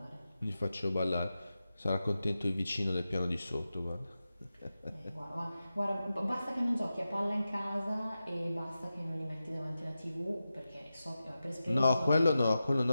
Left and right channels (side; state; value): both; inverted; correlation -0.93